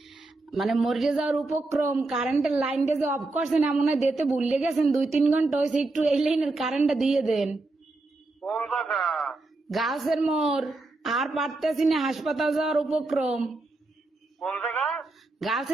মানে মরে যাওয়ার উপক্রম, কারেন্টের লাইনটা যে অফ করছেন এমন হয় দিতে ভুলে গেছেন, 2-3 ঘন্টা হয়েছে, একটু এই লাইনের কারেন্টটা দিয়ে দেন। কোন জায়গা? গাছের মোড়, আর পারতেছি না, হাসপাতাল যাওয়ার উপক্রম। কোন জায়গা? গার্লস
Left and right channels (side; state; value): left; quieter; 3.2 dB